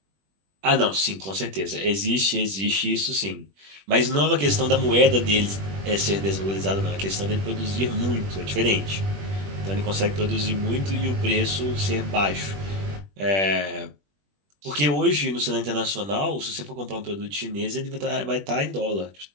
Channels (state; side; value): late; left; 21 ms